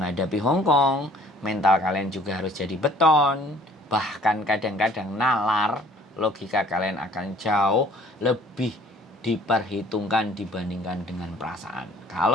Hong Kong. Mental kalian juga harus jadi beton. Bahkan kadang-kadang nalar. Logika kalian akan jauh lebih diperhitungkan dibandingkan dengan perasaan.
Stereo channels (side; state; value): both; normal; correlation 0.54